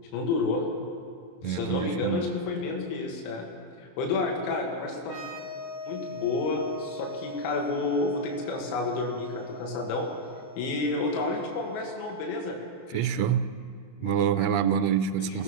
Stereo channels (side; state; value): right; late; 23 ms